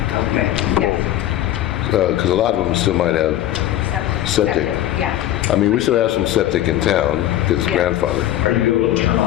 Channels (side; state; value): right; quieter; 13.1 dB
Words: Okay. Yes. Because a lot of them still might have septic. Yeah. I mean, we still have some septic in town because it's Yeah. grandfathered. Are you able to turn